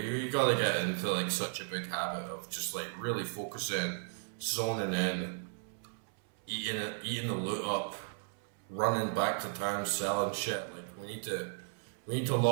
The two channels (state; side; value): silent; left; 54 dB below the other